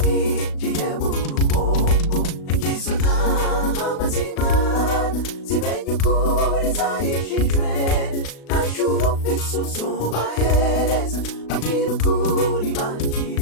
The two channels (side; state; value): right; late; 36 ms